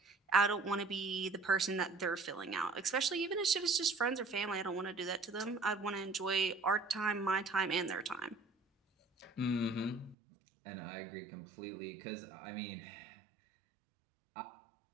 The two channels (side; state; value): left; drops out; at 10.2 s